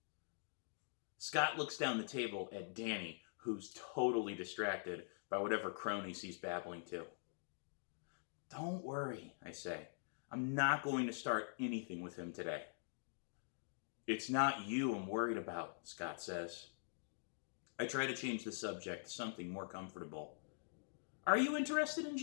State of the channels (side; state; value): right; silent; digital silence